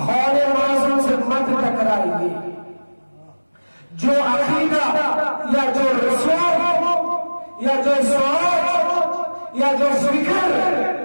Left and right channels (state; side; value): inverted; both; correlation -1.00